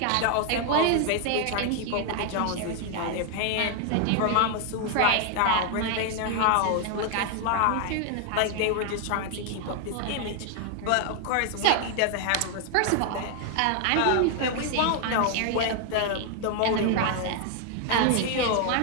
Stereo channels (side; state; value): both; different; correlation 0.00